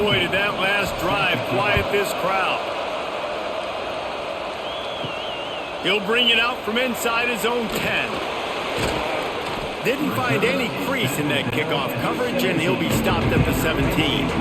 boy, did that last drive quiet this crowd. He'll bring it out from inside his own 10. Didn't find any crease in that kickoff coverage, and he'll be stopped at the 17.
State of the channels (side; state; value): both; identical; correlation 1.00